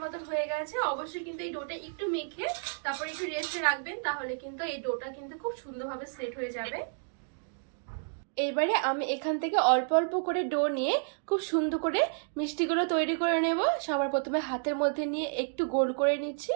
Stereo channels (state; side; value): silent; left; digital silence